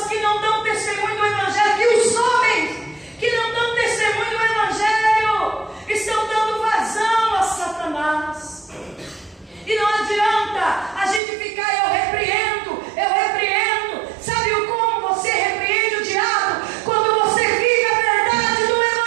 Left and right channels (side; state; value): left; drops out; at 11.2 s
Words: que não dão testemunho do evangelho, que os homens que não dão testemunho do evangelho estão dando vazão a Satanás. E não adianta a gente ficar, eu repreendo. Sabe como você repreende o diabo? Quando você vive a verdade do